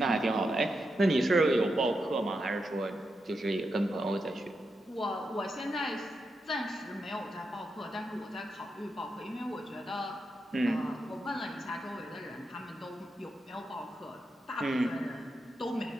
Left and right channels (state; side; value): normal; both; correlation 0.86